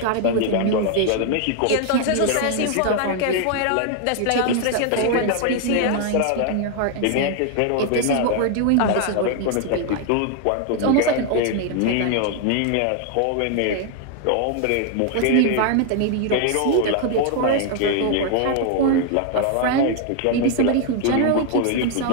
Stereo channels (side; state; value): both; different; correlation 0.00